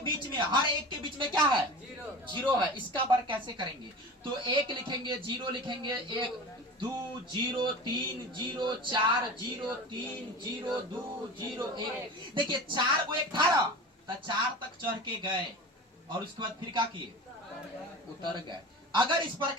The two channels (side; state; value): both; normal; correlation 0.33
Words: बीच में, हर एक के बीच में क्या है 0 है। इसका वर्ग कैसे करेंगे, तो 1 लिखेंगे, 0 लिखेंगे, 1 2 0 3 0 4 0 3 0 2 0 1। देखिए 4 को 1 था ना, तो 4 तक चढ़ के गए और उसके बाद फिर क्या किए, उतर गए। अगर इस